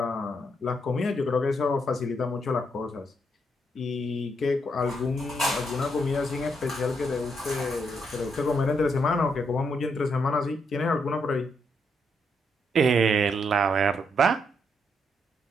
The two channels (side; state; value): both; normal; correlation 0.77